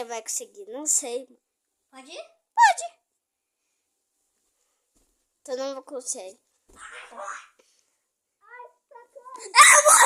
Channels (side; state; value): both; identical; correlation 1.00